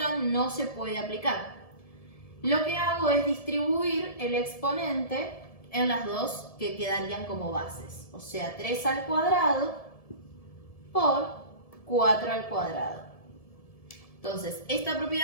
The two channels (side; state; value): right; late; 1.7 ms